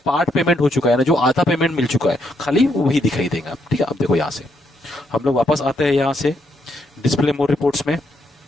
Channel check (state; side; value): normal; both; correlation 0.76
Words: पार्ट पेमेंट हो चुका है ना, जो आधा पेमेंट मिल चुका है, खाली वही दिखाई देगा। ठीक है, अब देखो यहां से हम लोग वापस आते हैं, यहां से डिस्प्ले मोर रिपोर्ट्स में,